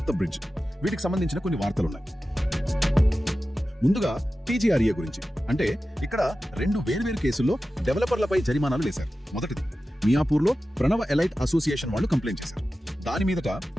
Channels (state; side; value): normal; both; correlation 0.94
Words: బ్రిడ్జ్, వీటికి సంబంధించిన కొన్ని వార్తలున్నాయి. ముందుగా టీజీఆర్ఏ గురించి అంటే ఇక్కడ రెండు వేర్వేరు కేసుల్లో డెవలపర్లపై జరిమానాలు వేశారు. మొదటిది మియాపూర్లో ప్రణవ ఎలైట్ అసోసియేషన్ వాళ్ళు కంప్లైంట్ చేశారు. దాని మీదట